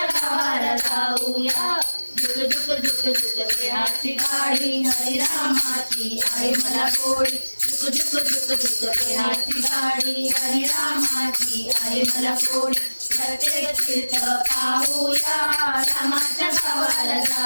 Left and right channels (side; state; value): both; inverted; correlation -1.00